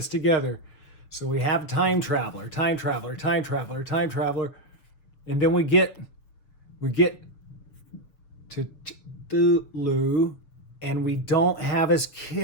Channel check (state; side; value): late; right; 6.9 ms